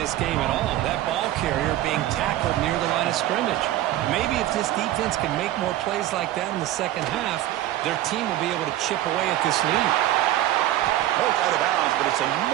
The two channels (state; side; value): quieter; left; 14.0 dB